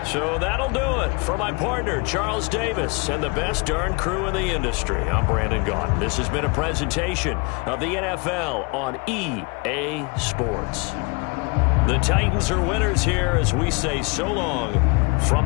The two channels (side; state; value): right; quieter; 30.3 dB